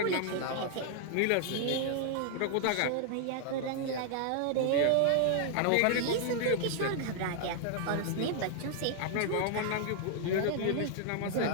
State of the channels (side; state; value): both; different; correlation 0.00